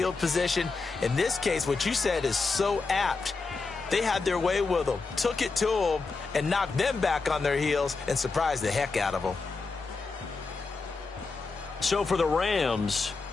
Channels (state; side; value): quieter; right; 4.1 dB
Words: position. In this case, what you said is so apt. They had their way with them, took it to them, and knocked them back on their heels and surprised the heck out of them. So for the Rams,